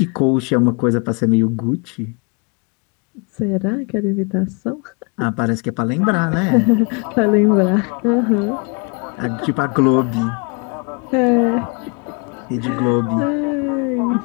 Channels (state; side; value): quieter; right; 32.3 dB